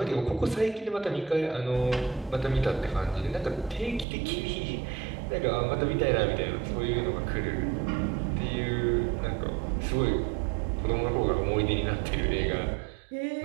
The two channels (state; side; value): drops out; left; at 4.0 s